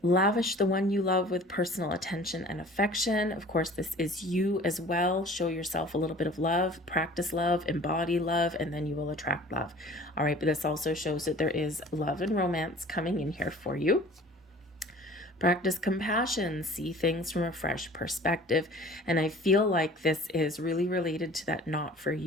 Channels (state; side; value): normal; both; correlation 0.46